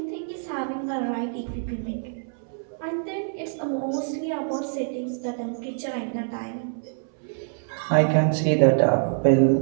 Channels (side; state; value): left; silent; 61 dB below the other